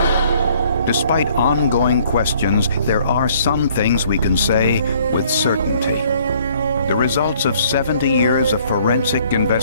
Despite ongoing questions, there are some things we can say with certainty. The results of 70 years of forensic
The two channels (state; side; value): inverted; both; correlation -0.60